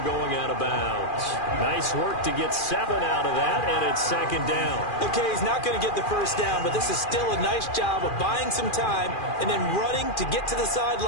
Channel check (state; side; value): late; right; 2.4 ms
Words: going out of bounds. Nice work to get 7 out of that, and it's 2nd down. Okay, he's not going to get the first down, but this is still a nice job of buying some time and then running to get to the